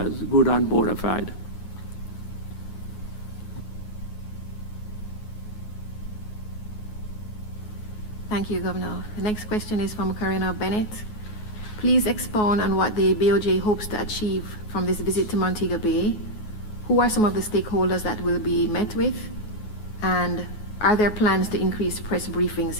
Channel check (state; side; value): late; right; 9.4 ms